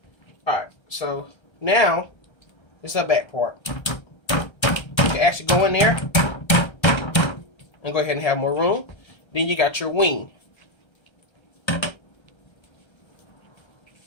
Alright, so now it's the back part. You can actually go in there and go ahead and have more room. Then you got your wing.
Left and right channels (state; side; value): late; right; 1.3 ms